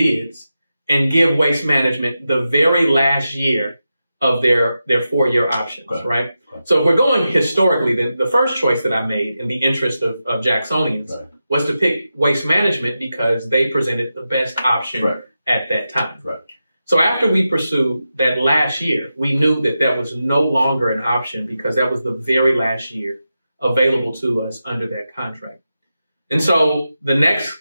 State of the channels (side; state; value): both; inverted; correlation -0.90